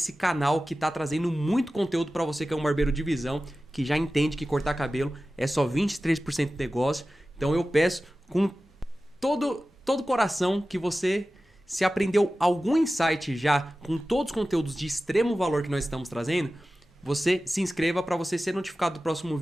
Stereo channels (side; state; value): both; normal; correlation 0.95